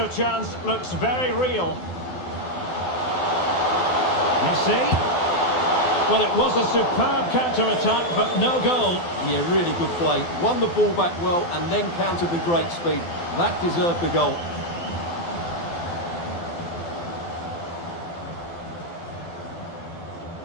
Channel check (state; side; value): late; right; 12 ms